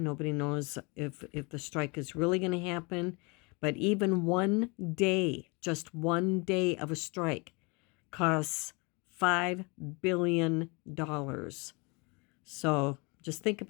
Nobody knows if the strike is really going to happen. But even one day, just one day of a strike costs $5 billion. So just think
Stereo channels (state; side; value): quieter; right; 29.2 dB